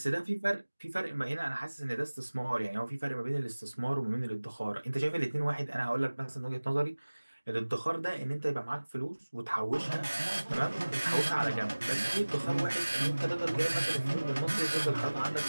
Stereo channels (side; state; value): both; inverted; correlation -1.00